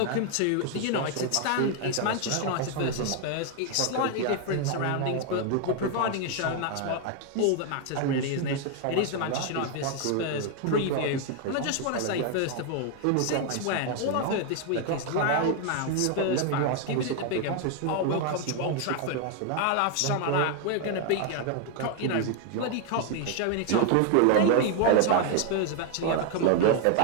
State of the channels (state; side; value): different; both; correlation 0.00